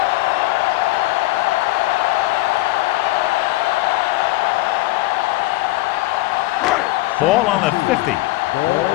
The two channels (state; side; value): quieter; right; 19.1 dB